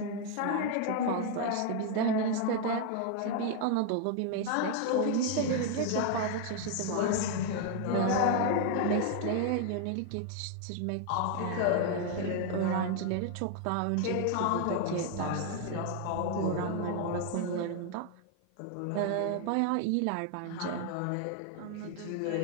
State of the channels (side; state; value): both; different; correlation 0.00